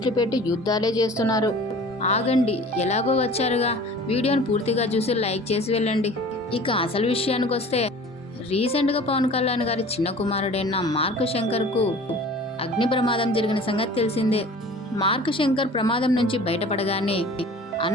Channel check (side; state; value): both; normal; correlation 0.44